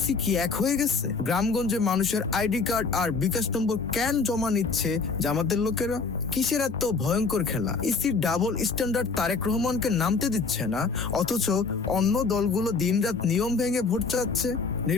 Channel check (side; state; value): right; quieter; 4.6 dB